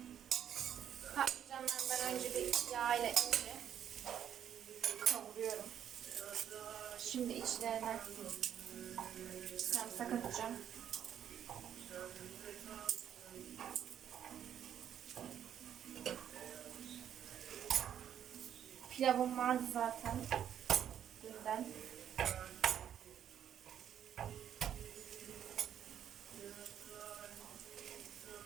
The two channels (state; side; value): quieter; left; 9.6 dB